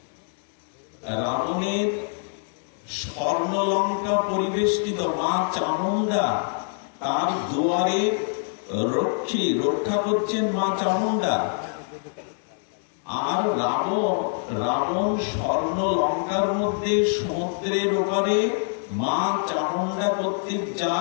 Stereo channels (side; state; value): right; silent; 60 dB below the other